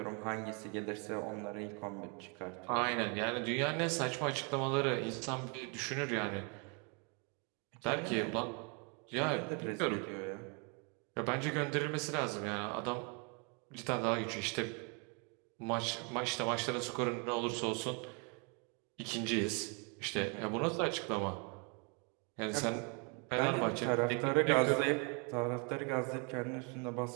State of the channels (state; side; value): quieter; left; 35.0 dB